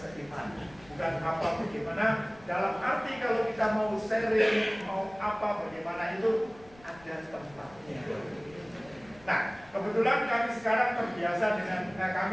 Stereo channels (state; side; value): noise; left; rumble, 25 dB below the sound